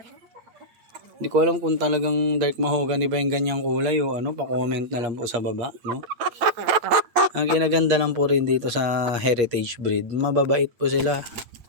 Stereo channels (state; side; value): late; left; 8.3 ms